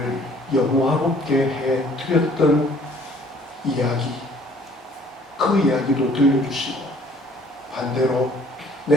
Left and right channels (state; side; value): normal; both; correlation 0.56